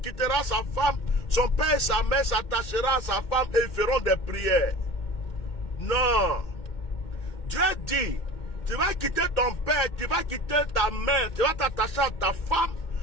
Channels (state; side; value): late; right; 2.2 ms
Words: quittera sa femme, son père et sa mère s'attachera à sa femme et ils feront des prières. Non. Dieu dit, tu vas quitter ton père, tu vas quitter ta mère, tu vas t'attacher à ta femme,